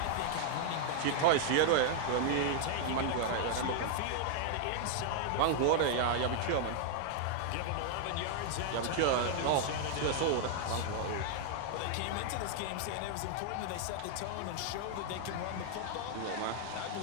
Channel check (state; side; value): different; both; correlation 0.00